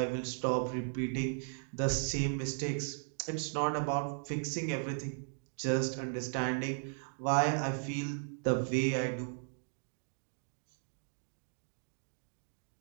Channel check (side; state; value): left; silent; digital silence